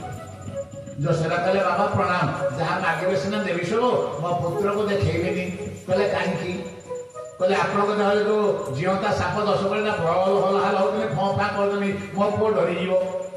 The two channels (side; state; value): both; identical; correlation 1.00